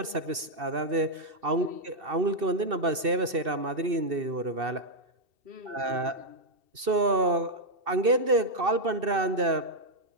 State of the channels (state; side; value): late; left; 2.7 ms